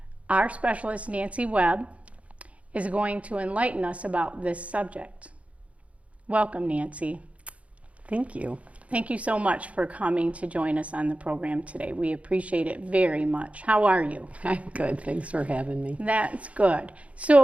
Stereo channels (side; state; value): left; late; 0.065 ms